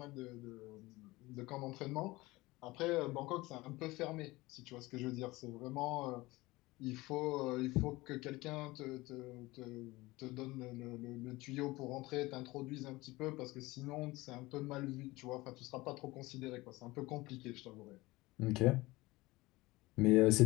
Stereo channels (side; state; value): right; quieter; 20.6 dB